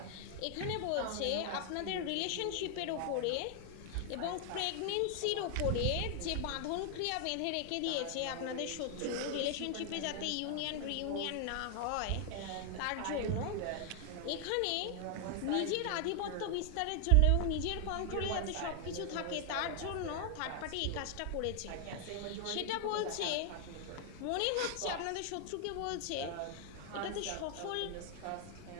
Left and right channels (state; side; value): different; both; correlation 0.00